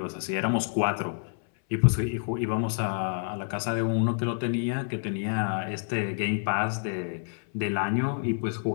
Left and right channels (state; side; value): silent; right; 59 dB below the other